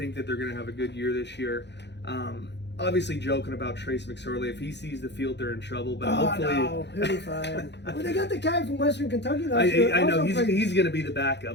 that they're going to have a good year this year. obviously joking about Trace McSorley. If he sees the field, they're in trouble. But Oh, hopefully, no, he'll be fine. Well, they got the guy from Western Kentucky last year. I know Also he's going to be the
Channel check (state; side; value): late; right; 0.50 ms